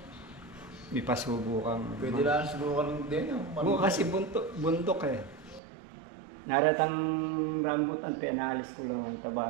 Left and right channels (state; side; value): drops out; left; at 5.6 s